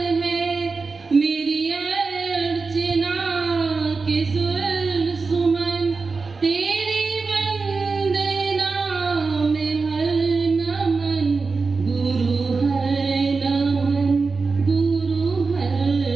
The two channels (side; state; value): left; quieter; 4.3 dB